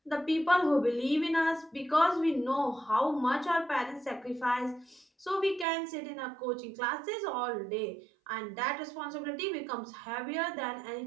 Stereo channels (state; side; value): drops out; left; at 5.7 s